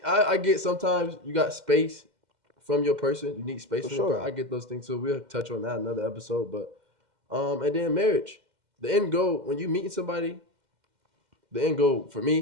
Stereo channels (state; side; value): late; left; 2.1 ms